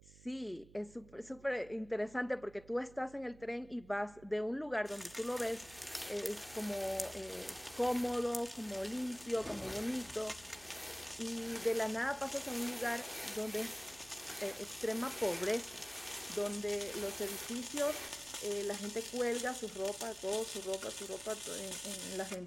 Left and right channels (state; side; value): noise; right; hum, 21 dB below the sound